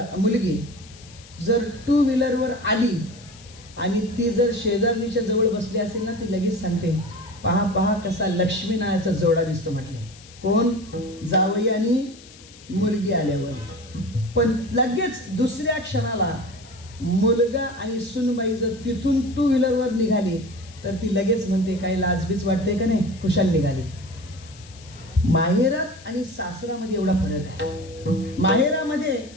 मुलगी जर टू व्हीलरवर आली आणि ती जर शेजारणीच्या जवळ बसली असेल ना, ती लगेच सांगते, पहा पहा कसा लक्ष्मी नावाचा जोडा दिसतो म्हटले. कोण? जावई आणि मुलगी आल्यावर. पण लगेच दुसऱ्या क्षणाला मुलगा आणि सुनबाई जर तिथून टू व्हीलरवर निघाली तर ती लगेच म्हणते, काही लाजबीज वाटते का नाही, खुशाल निघाली. माहेरात आणि सासरामध्ये एवढा फरक आहे. माहेरामध्ये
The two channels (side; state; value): left; noise; hiss, 21 dB below the sound